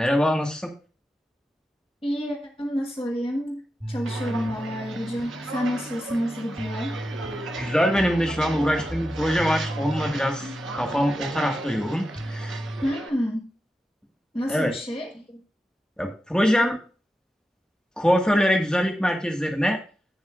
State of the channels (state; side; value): normal; both; correlation 0.90